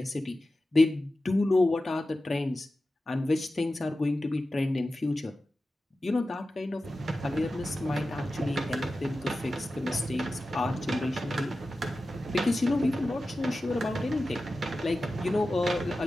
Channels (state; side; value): normal; both; correlation 0.94